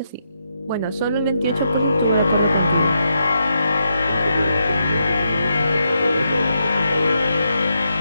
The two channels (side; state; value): both; inverted; correlation -0.82